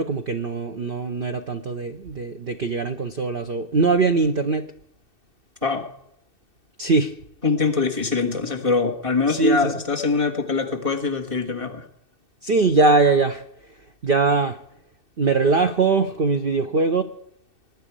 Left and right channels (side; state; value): left; late; 2.6 ms